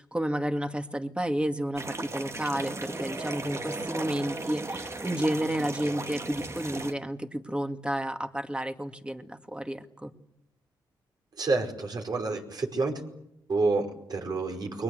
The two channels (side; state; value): both; normal; correlation 0.88